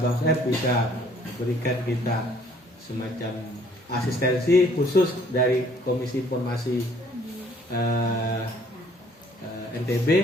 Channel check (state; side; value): normal; both; correlation 0.60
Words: Bang F bisa berikan kita semacam asistensi khusus dari Komisi Informasi NTB.